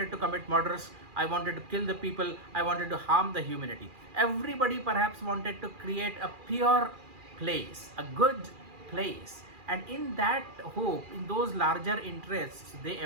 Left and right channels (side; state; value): left; late; 2.4 ms